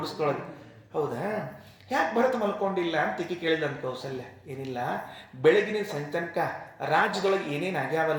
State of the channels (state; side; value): identical; both; correlation 1.00